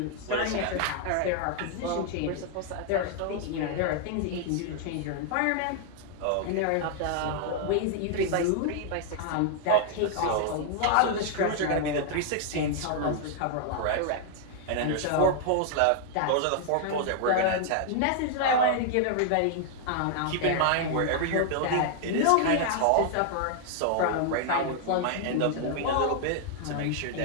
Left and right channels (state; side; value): different; both; correlation 0.00